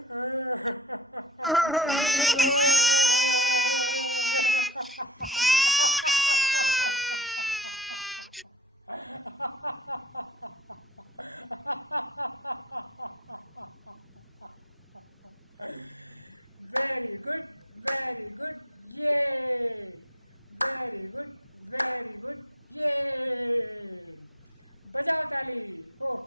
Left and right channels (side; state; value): both; normal; correlation 0.30